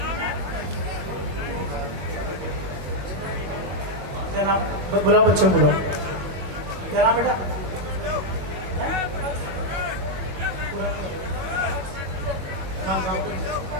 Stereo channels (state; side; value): late; left; 21 ms